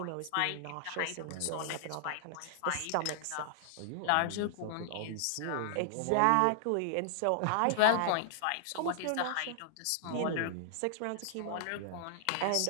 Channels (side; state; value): both; different; correlation -0.01